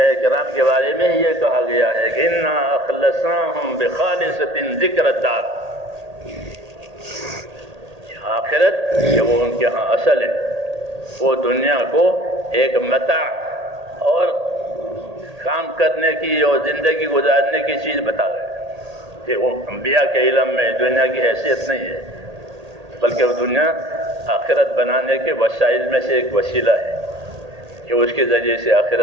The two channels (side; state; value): left; late; 1.8 ms